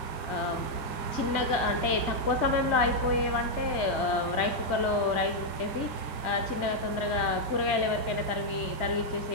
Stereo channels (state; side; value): late; right; 1.7 ms